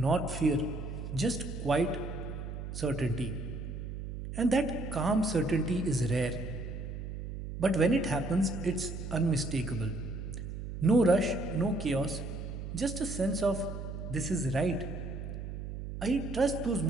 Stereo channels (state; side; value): noise; right; hum, 7 dB below the sound